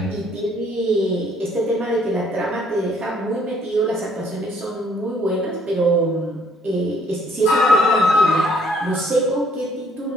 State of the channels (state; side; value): normal; both; correlation 0.64